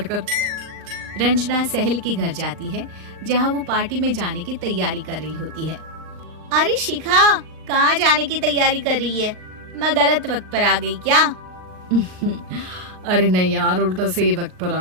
रंजना सहेली के घर जाती है, जहाँ वो पार्टी में जाने की तैयारी कर रही होती है। अरे शिखा, कहाँ जाने की तैयारी कर रही है? मैं गलत वक्त पर आ गई क्या? अरे नहीं यार, उल्टा सही वक्त पर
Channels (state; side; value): late; left; 39 ms